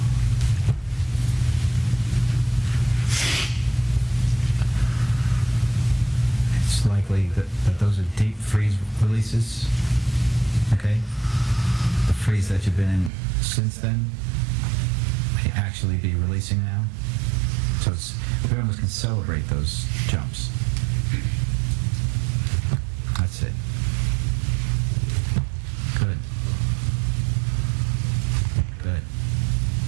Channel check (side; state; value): left; drops out; at 13.1 s